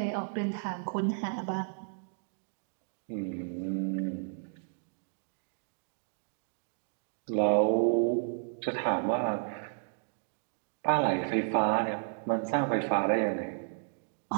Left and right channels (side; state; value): left; silent; digital silence